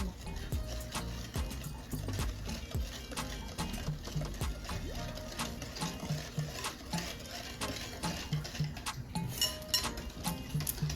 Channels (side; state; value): both; identical; correlation 1.00